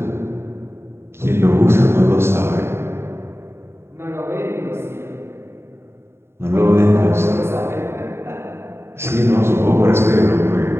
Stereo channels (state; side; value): late; left; 0.12 ms